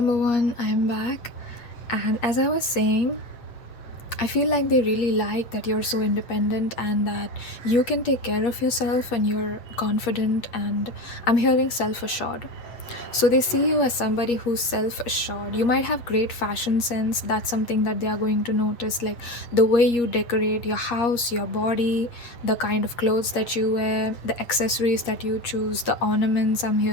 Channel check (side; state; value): right; late; 8.3 ms